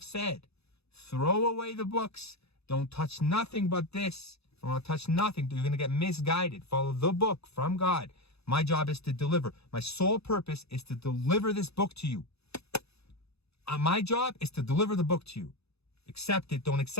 said, throw away the books. Don't touch nothing but this. Don't touch nothing. You're going to get misguided. Follow the book from God. My job is to deliver. My sole purpose is to deliver this book to you. My job is to deliver the book to you. Accept it. Don't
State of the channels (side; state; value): right; late; 0.79 ms